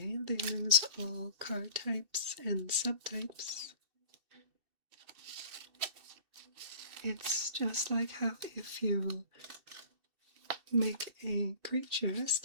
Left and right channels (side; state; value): left; late; 2.7 ms